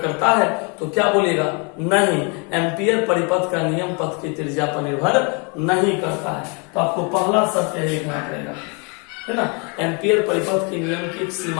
है, तो क्या बोलेगा? नहीं, एम्पियर परिपथ का नियम पथ की त्रिज्या पर निर्भर नहीं करता है। तो आपको पहला सत्य लिखना पड़ेगा, है ना। एम्पियर परिपथ के नियम की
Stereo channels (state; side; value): quieter; right; 33.8 dB